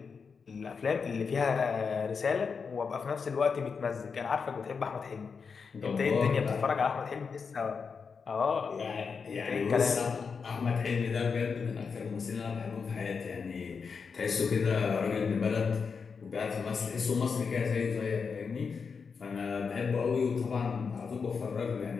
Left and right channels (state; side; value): quieter; right; 5.6 dB